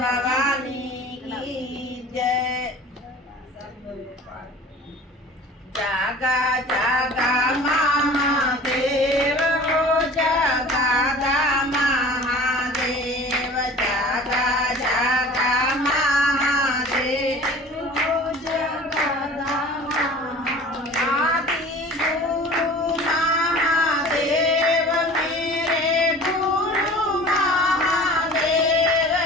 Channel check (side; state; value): both; normal; correlation 0.43